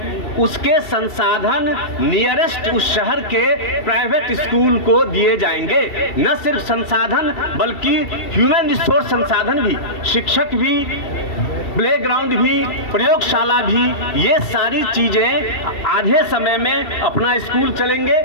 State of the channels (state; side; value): late; right; 2.7 ms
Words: उसके संसाधन नियरेस्ट उस शहर के प्राइवेट स्कूल को दिए जाएंगे। न सिर्फ संसाधन बल्कि ह्यूमन रिसोर्स संसाधन भी, शिक्षक भी, प्लेग्राउंड भी, प्रयोगशाला भी, ये सारी चीजें आधे समय में अपना स्कूल चलेंगे